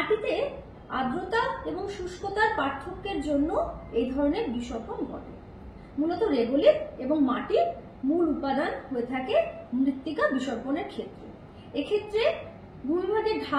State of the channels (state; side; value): identical; both; correlation 1.00